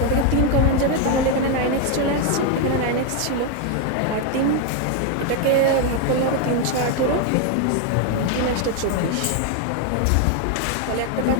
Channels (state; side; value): different; both; correlation 0.01